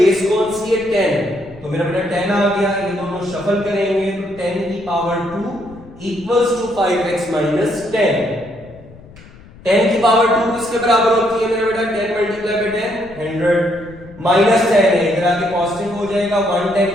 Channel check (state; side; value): noise; left; rumble, 21 dB below the sound